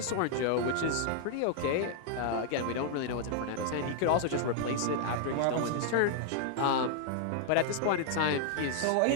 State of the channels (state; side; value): different; both; correlation 0.00